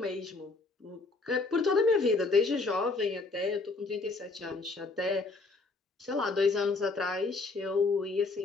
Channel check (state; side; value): quieter; right; 3.7 dB